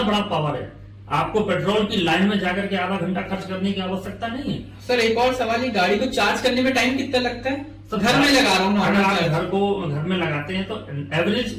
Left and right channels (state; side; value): identical; both; correlation 1.00